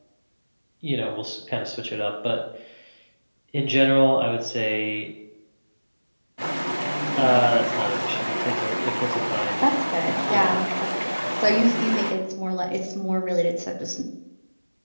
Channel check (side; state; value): both; inverted; correlation -1.00